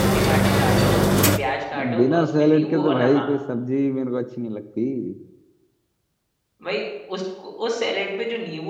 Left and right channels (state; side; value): identical; both; correlation 1.00